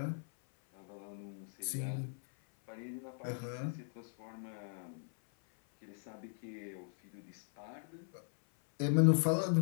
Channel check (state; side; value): silent; right; 52 dB below the other